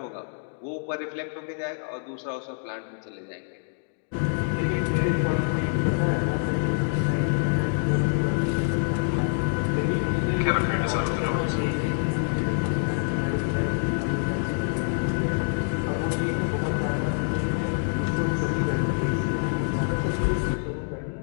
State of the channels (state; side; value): silent; right; digital silence